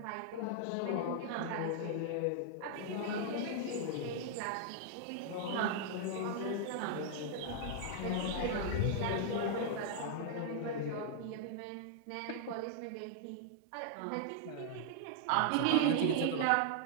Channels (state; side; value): different; both; correlation -0.01